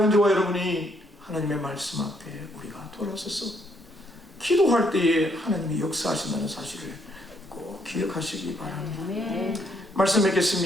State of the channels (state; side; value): normal; both; correlation 0.71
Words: 저와 여러분이 하나님의 말씀 앞에 우리가 돌아서서 기도할 때에 하나님이 역사하신다는 사실을 꼭 기억하시기 바랍니다. 말씀